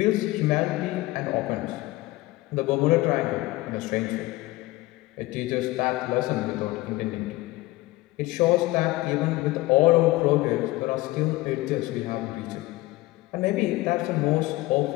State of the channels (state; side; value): quieter; right; 19.4 dB